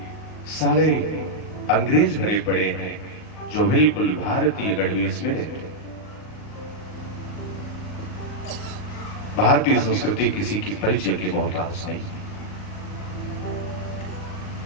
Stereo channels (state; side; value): late; right; 38 ms